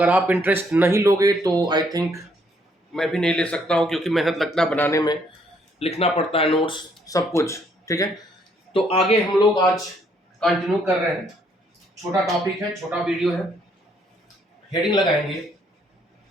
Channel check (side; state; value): both; normal; correlation 0.68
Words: आप इंटरेस्ट नहीं लोगे तो आई थिंक मैं भी नहीं ले सकता हूँ, क्योंकि मेहनत लगता है बनाने में, लिखना पड़ता है नोट्स, सब कुछ। ठीक है, तो आगे हम लोग आज कंटिन्यू कर रहे हैं। छोटा टॉपिक है, छोटा वीडियो है। हेडिंग लगाएंगे